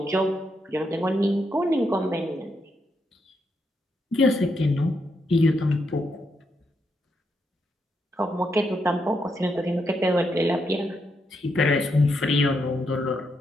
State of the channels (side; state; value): both; normal; correlation 0.80